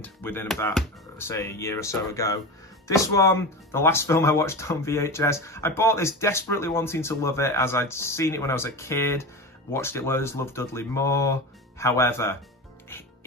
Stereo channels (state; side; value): normal; both; correlation 0.26